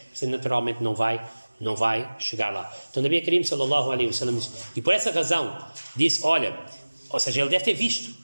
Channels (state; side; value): inverted; both; correlation -1.00